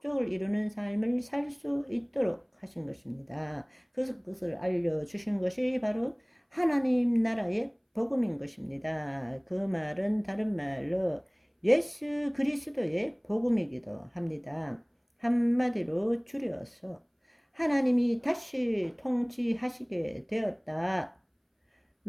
이루는 삶을 살 수 있도록 하신 것입니다. 그래서 그것을 알려주신 것이 바로 하나님 나라의 복음인 것입니다. 그 말은 다른 말로 예수 그리스도의 복음이기도 합니다. 한마디로 줄여서 하나님이 다시 통치하시게 되었다.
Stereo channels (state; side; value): identical; both; correlation 1.00